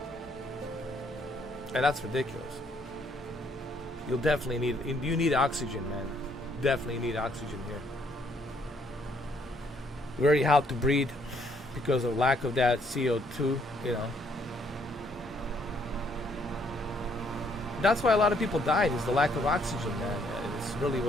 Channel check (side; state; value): both; normal; correlation 0.68